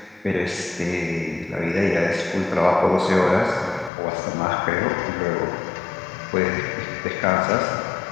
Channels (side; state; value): right; drops out; at 3.9 s